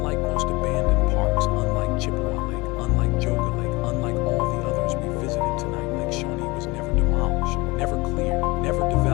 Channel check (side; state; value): right; quieter; 23.6 dB